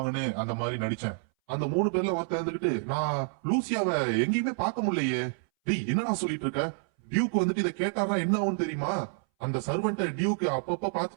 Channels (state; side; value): silent; left; 59 dB below the other